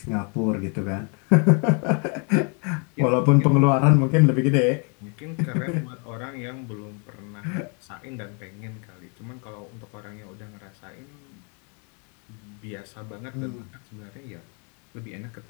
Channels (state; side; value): quieter; right; 37.4 dB